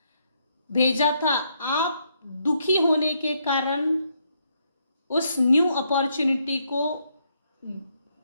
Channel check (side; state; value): both; inverted; correlation -0.75